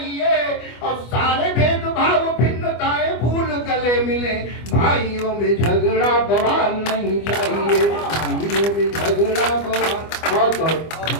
और सारे भेदभाव भिन्नताएं भूल गले मिले, भाइयों में झगड़ा बवाल नहीं चाहिए, भाइयों में झगड़ा बवाल।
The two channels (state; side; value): late; right; 25 ms